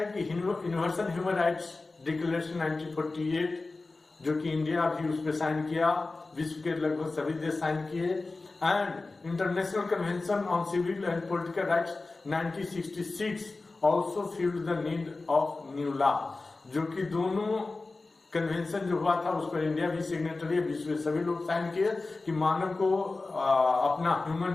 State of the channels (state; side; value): quieter; right; 3.5 dB